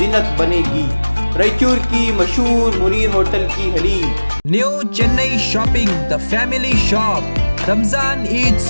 بنے گی۔ رائچور کی مشہور منیر ہوٹل کی haleem. New Chennai shopping, the family shop. Ramzan Eid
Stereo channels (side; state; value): both; inverted; correlation -1.00